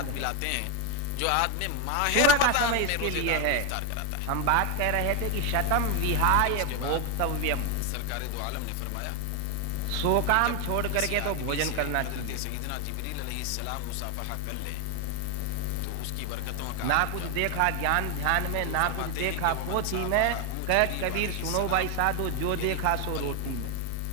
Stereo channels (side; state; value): both; different; correlation 0.01